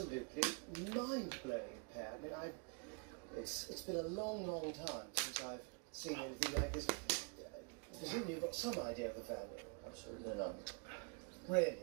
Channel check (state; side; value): quieter; left; 35.0 dB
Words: mind-blowing pair. I mean, it's been a long, long time since I've seen anything like this. Presumably you've got some idea of the value. Absolutely none. Really?